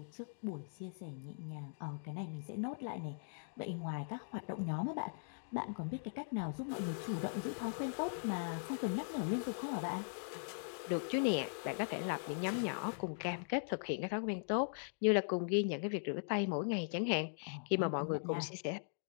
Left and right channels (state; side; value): silent; right; digital silence